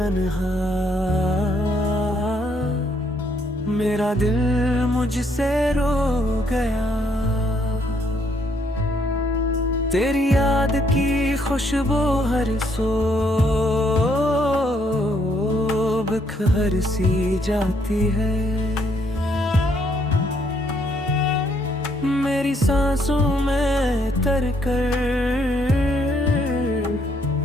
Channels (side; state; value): both; normal; correlation 0.70